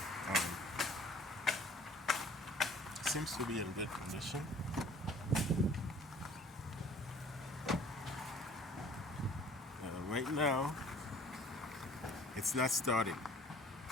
It seems to be in good condition. Right now, it's not starting.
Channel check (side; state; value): both; normal; correlation 0.52